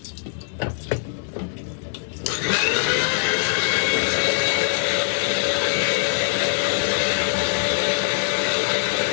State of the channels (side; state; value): right; silent; 64 dB below the other